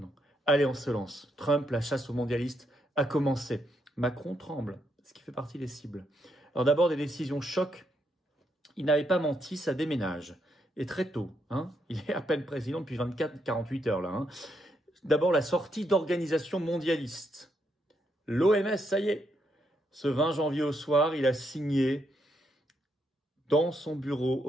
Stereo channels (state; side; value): normal; both; correlation 0.78